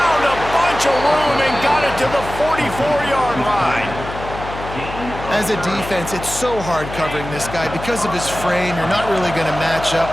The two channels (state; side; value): noise; left; hum, 10 dB below the sound